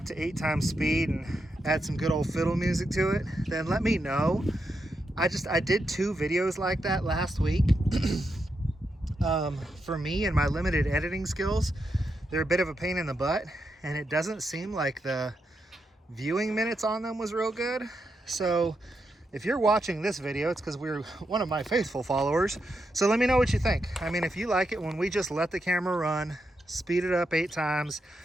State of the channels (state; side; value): normal; both; correlation 0.84